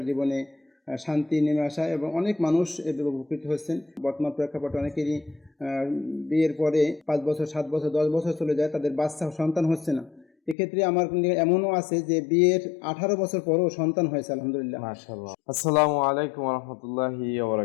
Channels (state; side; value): drops out; right; at 10.6 s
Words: জীবনে শান্তি নেমে আসা এবং অনেক মানুষ এদের উপকৃত হচ্ছেন। বর্তমান প্রেক্ষাপটে অনেকেরই বিয়ের পরে 5 বছর, 7 বছর, 10 বছর চলে যায়, তাদের বাচ্চা সন্তান হচ্ছে না। এক্ষেত্রে আমার এমনও আছে যে বিয়ের 18 বছর পরেও সন্তান হয়েছে আলহামদুলিল্লাহ। মাশাআল্লাহ। আসসালামু আলাইকুম ওয়া রাহমাতুল্লাহি ওয়া